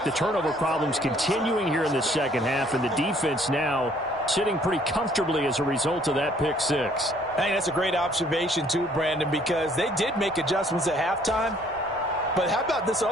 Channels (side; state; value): both; normal; correlation 0.61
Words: The turnover problems continuing here in the second half, and the defense now sitting pretty comfortably as a result of that pick 6. I think that's a great observation too, Brandon, because they did make adjustments at halftime. But how about this